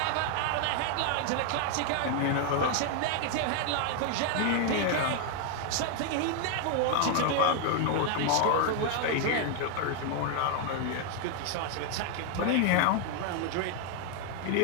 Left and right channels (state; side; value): different; both; correlation 0.00